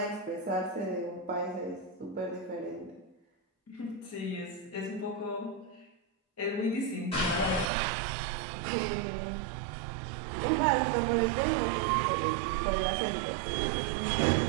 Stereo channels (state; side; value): drops out; left; at 7.7 s